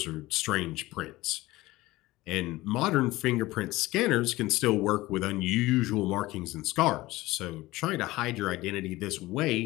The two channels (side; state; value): right; quieter; 18.7 dB